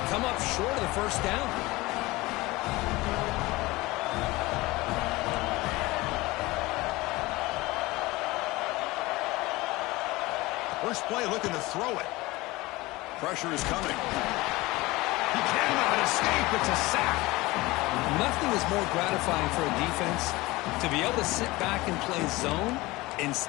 come up short of the first down. First play looking to throw it. Pressure is coming. He cannot escape. It's a sack. Nothing is more gratifying for a defense to be able to sit back and play zone and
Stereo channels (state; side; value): quieter; right; 20.8 dB